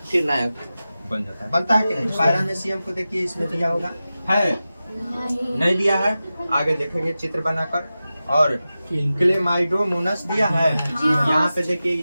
फिर नया बन जाता है। बनता है कि नहीं? पैरामीशियम को देखिए, इसमें दिया होगा, है नहीं दिया है? आगे देखेंगे चित्र बनाकर। और क्लेमाइडोमोनास दिया है, यहाँ पे देखिए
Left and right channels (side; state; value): both; inverted; correlation -0.94